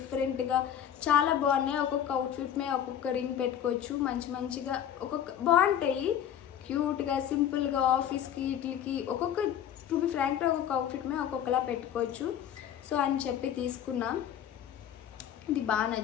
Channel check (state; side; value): quieter; right; 9.8 dB